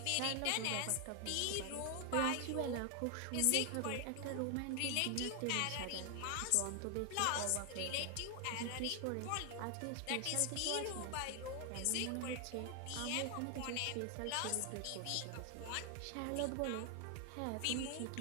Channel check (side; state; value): both; different; correlation 0.00